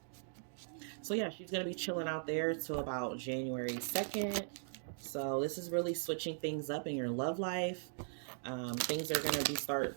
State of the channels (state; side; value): silent; left; digital silence